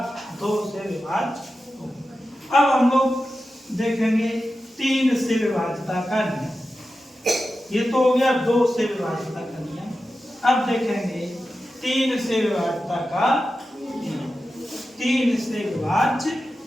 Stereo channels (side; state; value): both; normal; correlation 0.92